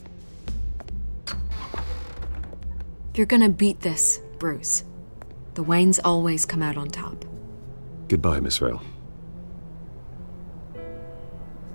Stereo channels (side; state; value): both; inverted; correlation -1.00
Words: You're gonna beat this, Bruce. The Waynes always come out on top. Goodbye, Miss Vale.